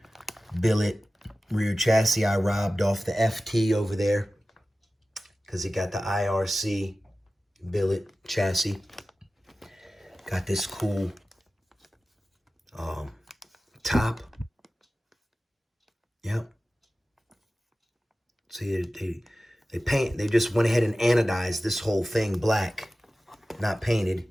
billet rear chassis I robbed off the FT over there because it got the IRC billet chassis. Got this cool top. Yep. See, they just went ahead and anodized this whole thing black, not painted.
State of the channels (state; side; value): normal; both; correlation 0.96